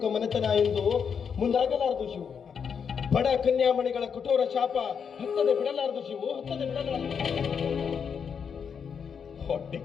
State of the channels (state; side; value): quieter; right; 6.8 dB